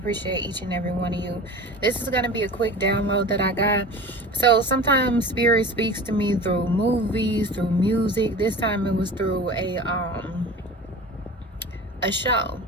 each and every one of you. This is going to be a quick download that I got. So sometimes spirit speaks to me through movies, through music. This time it was through a show,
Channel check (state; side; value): normal; both; correlation 0.36